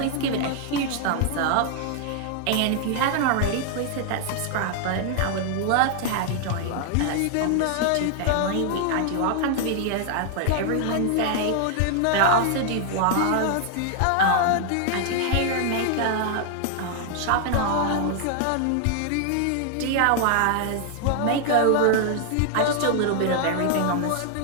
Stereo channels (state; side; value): different; both; correlation 0.00